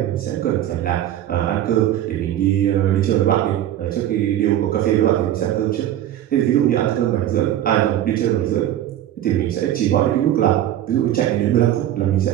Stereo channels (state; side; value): quieter; left; 12.1 dB